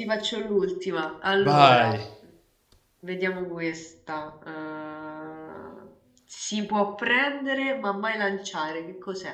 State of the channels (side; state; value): both; identical; correlation 1.00